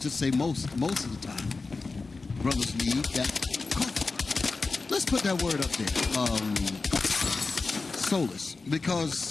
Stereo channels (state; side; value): quieter; right; 3.9 dB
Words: say most of the time, brothers need that comfort. Let's put that word up there. Solace.